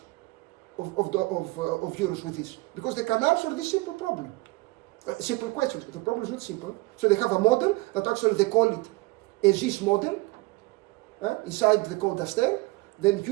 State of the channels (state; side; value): quieter; left; 22.2 dB